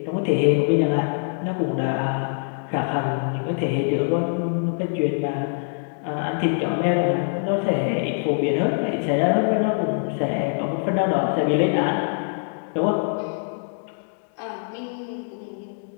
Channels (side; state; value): right; silent; digital silence